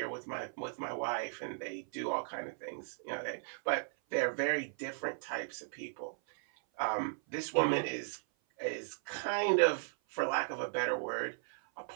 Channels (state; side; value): silent; left; 53 dB below the other